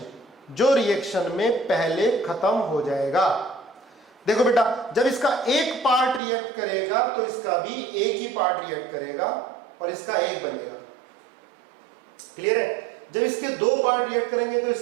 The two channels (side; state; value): left; drops out; at 6.2 s